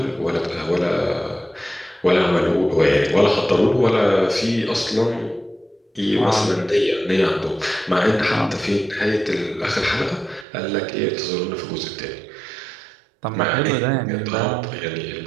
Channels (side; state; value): left; drops out; at 10.5 s